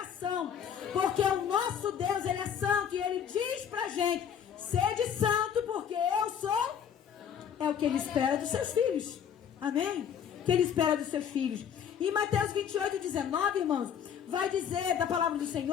porque o nosso Deus, Ele é santo e Ele diz pra gente: sede santo porque eu sou. É o que Ele espera dos seus filhos. Amém? O que Ele espera dos seus filhos. Em Mateus 28, 19, irmãos, vai dizer da palavra do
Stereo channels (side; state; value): right; quieter; 8.3 dB